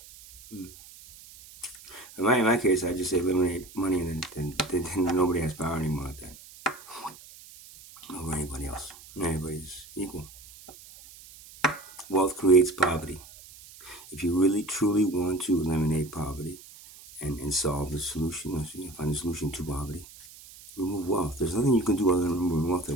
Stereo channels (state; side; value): noise; right; hiss, 19 dB below the sound